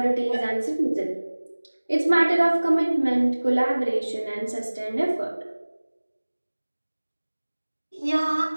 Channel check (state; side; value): inverted; both; correlation -1.00